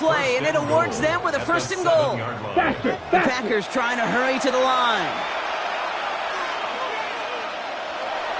and it awards them with a 1st and goal. Faster, The faster. Packers trying to hurry to the line.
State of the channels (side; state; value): both; identical; correlation 1.00